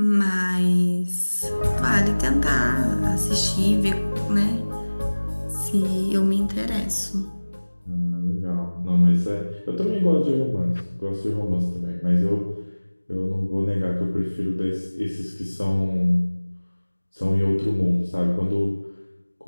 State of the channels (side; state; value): both; inverted; correlation -1.00